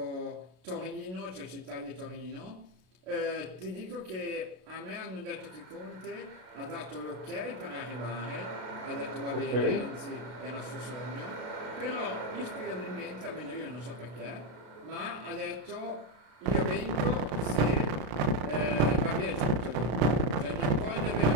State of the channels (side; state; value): left; late; 32 ms